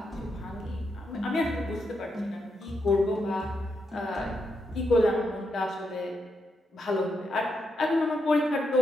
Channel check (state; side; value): normal; both; correlation 0.82